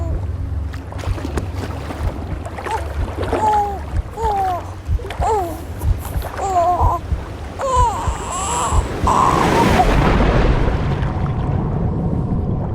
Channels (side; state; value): both; identical; correlation 1.00